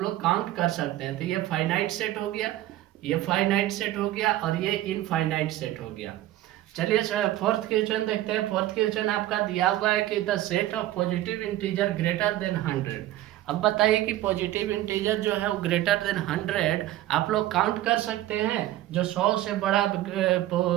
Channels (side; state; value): left; quieter; 14.7 dB